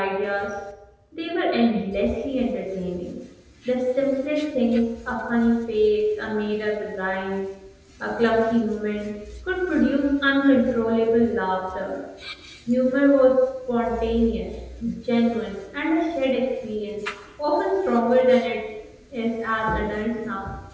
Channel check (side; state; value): both; identical; correlation 1.00